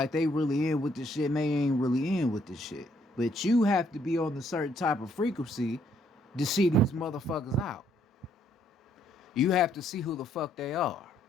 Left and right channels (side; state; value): both; normal; correlation 0.69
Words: they really in with this shit, and they ain't really in with this shit. But you have to be on a certain type of frequency to see these motherfuckers out. You have to see who the fuck they are.